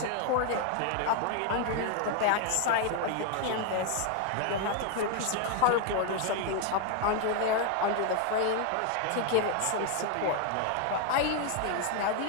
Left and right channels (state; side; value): different; both; correlation 0.00